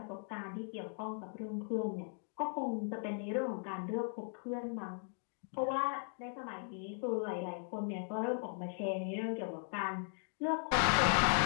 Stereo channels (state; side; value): silent; right; 53 dB below the other